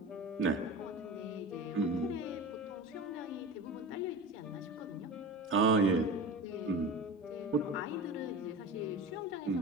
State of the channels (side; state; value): both; normal; correlation 0.30